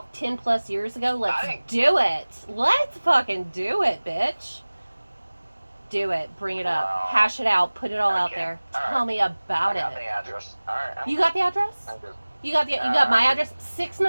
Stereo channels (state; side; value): inverted; both; correlation -1.00